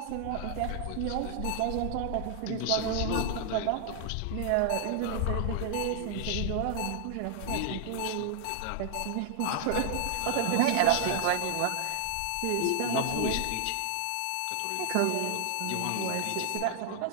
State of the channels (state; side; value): different; both; correlation 0.00